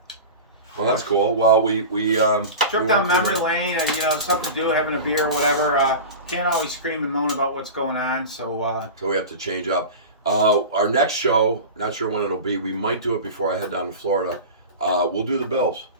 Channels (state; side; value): inverted; both; correlation -0.30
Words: Well, that's cool. Well, we trip down memory lane, and something to do, having a beer, whatever. Can't always scream and moan about what's going on, so we have to change up. Our next show, not sure when it'll be. We might do it before I head down to Florida. We'll do the Bills.